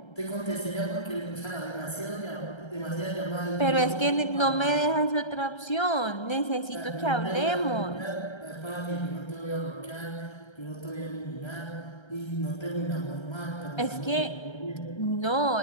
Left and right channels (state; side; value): late; right; 1.3 ms